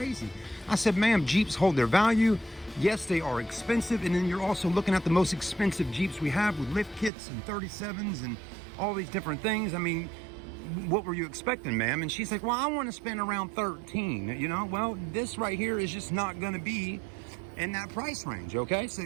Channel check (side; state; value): left; drops out; at 7.1 s